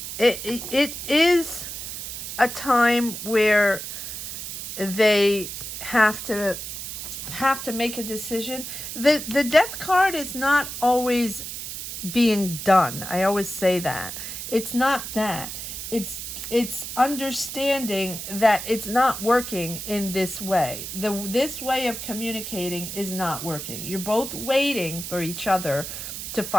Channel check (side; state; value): right; noise; hiss, 7 dB below the sound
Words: is a time where they have to make a decision. The Death card is not always being done. I always say that. It's not that. It's understanding that it's not working in this way. This way of communicating is not working. You're both waiting for each other to